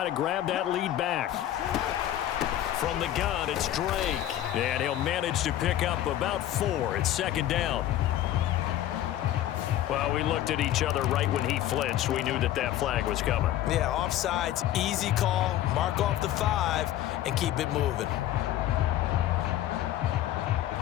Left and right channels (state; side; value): quieter; right; 12.8 dB